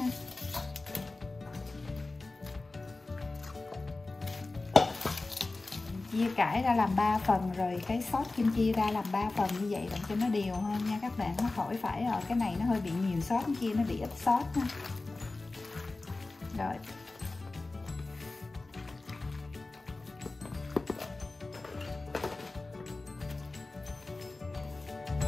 Chia cải ra làm 3 phần, rồi cái sốt kim chi ra làm 3 phần như vậy để cho nó đều hơn nha các bạn. Nó khỏi phải ở cái này nó hơi bị nhiều sốt, cái kia nó bị ít sốt ha. Rồi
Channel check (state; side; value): quieter; right; 3.3 dB